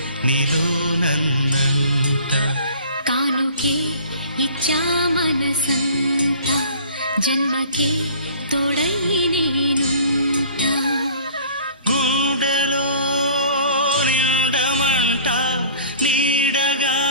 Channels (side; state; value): both; inverted; correlation -0.47